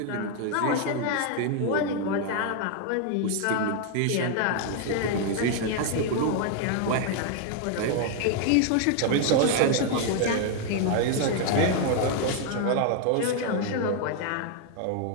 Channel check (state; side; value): different; both; correlation 0.00